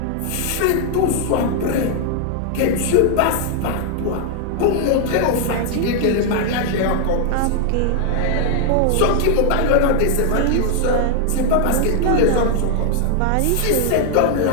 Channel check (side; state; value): both; different; correlation 0.00